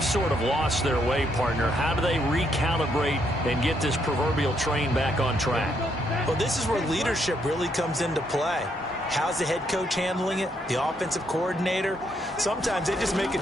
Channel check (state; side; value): normal; both; correlation 0.74